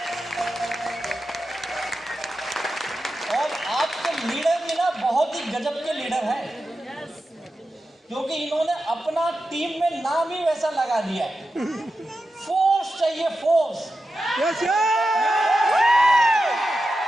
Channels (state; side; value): normal; both; correlation 0.91